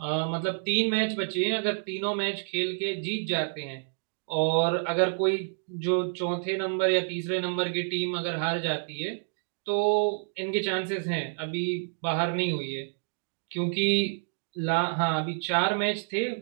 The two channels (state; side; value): silent; left; digital silence